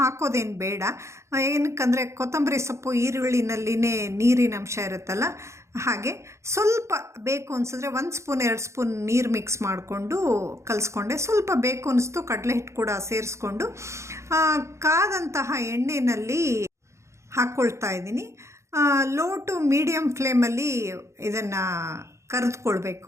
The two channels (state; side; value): late; left; 0.14 ms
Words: ಬೇಡ. ಏನಕ್ಕಂದರೆ ಕೊತ್ತಂಬರಿ ಸೊಪ್ಪು ಈರುಳ್ಳಿನಲ್ಲಿನೇ ನೀರಿನ ಅಂಶ ಇರುತ್ತಲ್ಲ, ಹಾಗೆ ಸ್ವಲ್ಪ ಬೇಕು ಅನಿಸಿದ್ರೆ 1 ಸ್ಪೂನ್ 2 ಸ್ಪೂನ್ ನೀರು ಮಿಕ್ಸ್ ಮಾಡಿಕೊಂಡು ಕಲಿಸ್ಕೊಂಡೆ. ಸ್ವಲ್ಪ ಬೇಕು ಅನಿಸ್ತು ಕಡಲೆ ಹಿಟ್ಟು ಕೂಡ ಸೇರಿಸ್ಕೊಂಡು ಕಾದಂತಹ ಎಣ್ಣೆಯಲ್ಲಿ ಹಾಕ್ಕೊಳ್ತಾ ಇದ್ದೀನಿ. ಲೋ ಟು ಮೀಡಿಯಮ್ ಫ್ಲೇಮಲ್ಲಿ ಇದನ್ನು